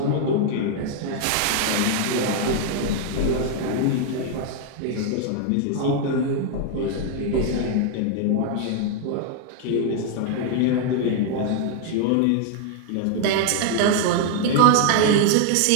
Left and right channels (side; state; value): both; different; correlation 0.00